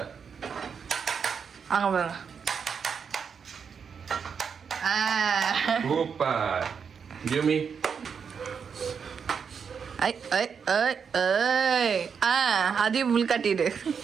அங்க பாருங்க. சூப்பர். Give me. அதையும் முள் காட்டிடு.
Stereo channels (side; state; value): left; quieter; 6.5 dB